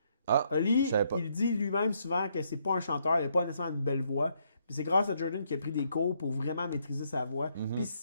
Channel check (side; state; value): both; inverted; correlation -0.73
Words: Ah, Holly, je savais pas. il dit lui-même souvent que c'est pas un chanteur, il n'a pas nécessairement une belle voix. Puis c'est grâce à Jordan qui a pris des cours pour vraiment maîtriser sa voix. Mhm. Puis